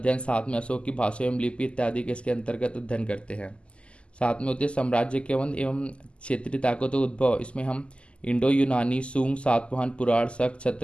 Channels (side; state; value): right; late; 0.054 ms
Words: साथ में अशोक की भाषा एवं लिपि इत्यादि के इसके अंतर्गत अध्ययन करते हैं। साथ में होते साम्राज्य के एवं क्षेत्रीय ताकतों का उद्भव, इसमें हम इंडो यूनानी, सूंग, सातवाहन, पुराण, शक,